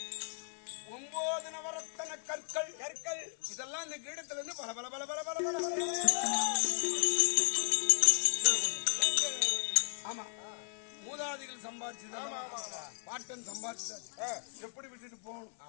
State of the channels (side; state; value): right; silent; 54 dB below the other